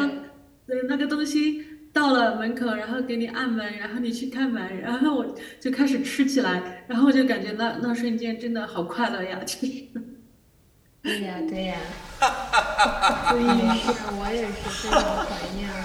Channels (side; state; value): both; identical; correlation 1.00